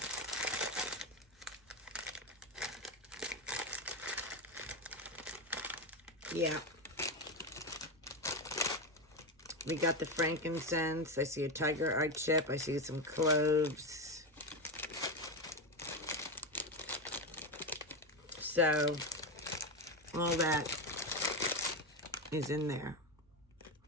Yeah. We got the frankincense. I see a tiger eye chip. I see some cloves. So, all that is in there.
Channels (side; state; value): both; normal; correlation 0.13